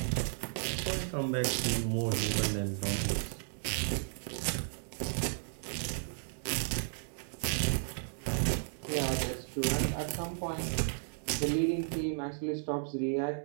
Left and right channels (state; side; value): silent; left; 55 dB below the other